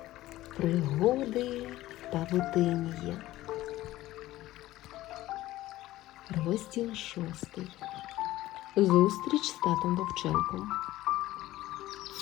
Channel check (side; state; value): right; quieter; 16.0 dB